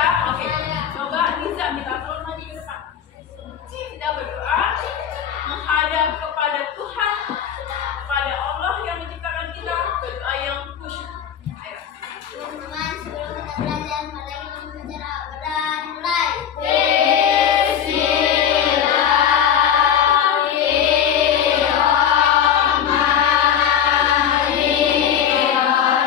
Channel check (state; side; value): quieter; right; 8.9 dB